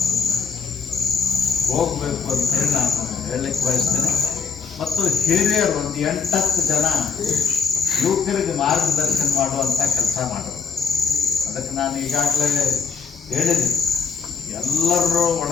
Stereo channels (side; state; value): right; quieter; 5.6 dB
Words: ಹೋಗಬೇಕು ಅಂತೇಳಿ ನಾನು ಹೇಳಲಿಕ್ಕೆ ಬಯಸ್ತೇನೆ. ಮತ್ತು ಹಿರಿಯರು ಒಂದು 8-10 ಜನ ಯುವಕರಿಗೆ ಮಾರ್ಗದರ್ಶನ ಮಾಡುವಂಥ ಕೆಲಸ ಮಾಡೋದು. ಅದಕ್ಕೆ ನಾನು ಈಗಾಗಲೇ ಹೇಳಿದ್ದೀನಿ, ಎಲ್ಲರೂ